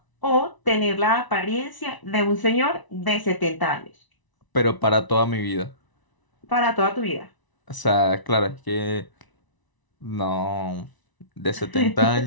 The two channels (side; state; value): right; late; 1.0 ms